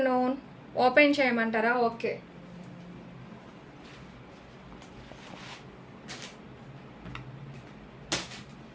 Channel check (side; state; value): both; identical; correlation 1.00